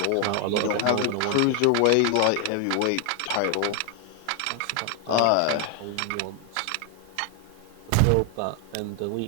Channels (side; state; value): both; different; correlation 0.00